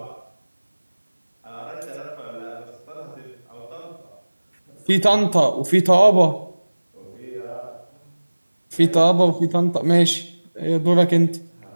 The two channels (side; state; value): both; inverted; correlation -1.00